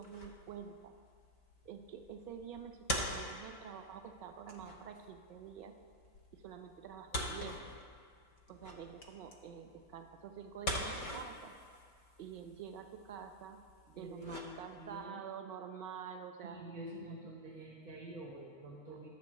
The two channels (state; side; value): late; right; 5.1 ms